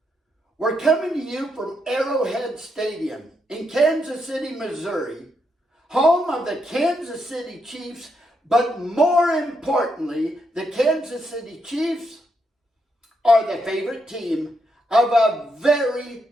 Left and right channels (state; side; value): normal; both; correlation 0.80